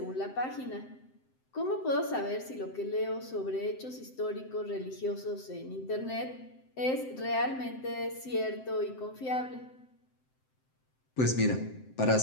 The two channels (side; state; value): right; late; 7.7 ms